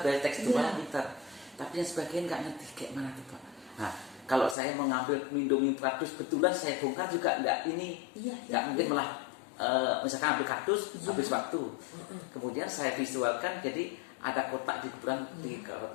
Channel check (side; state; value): right; drops out; at 4.5 s